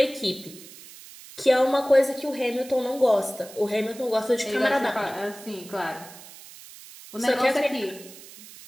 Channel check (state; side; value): noise; right; hiss, 18 dB below the sound